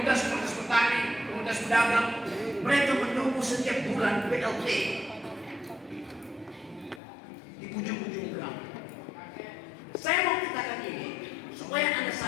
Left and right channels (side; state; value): right; drops out; at 7.0 s